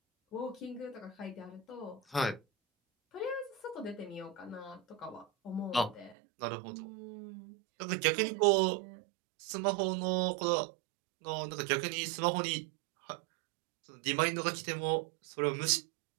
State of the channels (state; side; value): drops out; left; at 6.2 s